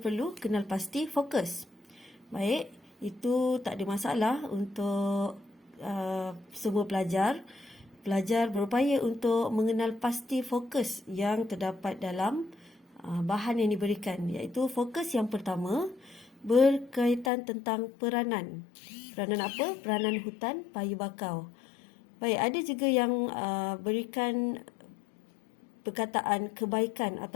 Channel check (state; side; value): drops out; right; at 17.3 s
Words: kenal pasti fokus. Baik, itu tak ada masalah untuk semua pelajar. Pelajar berupaya untuk mengenal pasti fokus yang terdapat dalam bahan yang diberikan, iaitu fokus yang pertama berkaitan tentang peranan. Peranan apa? Peranan hutan paya bakau. Baik, ada juga yang berikan perkataan kebaikan